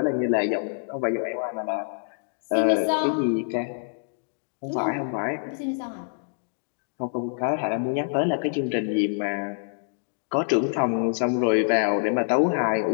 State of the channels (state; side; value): silent; right; digital silence